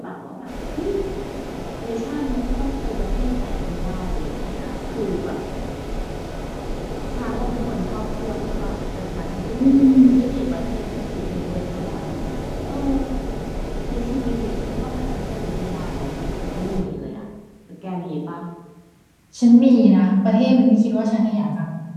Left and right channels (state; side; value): identical; both; correlation 1.00